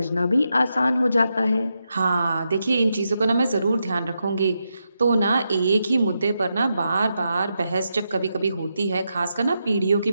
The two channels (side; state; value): both; inverted; correlation -0.85